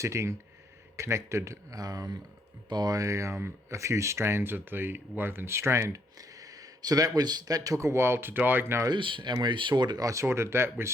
connected by a few strands of the woven strand. So that took a while to diagnose, and I sorted that with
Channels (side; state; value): both; normal; correlation 0.71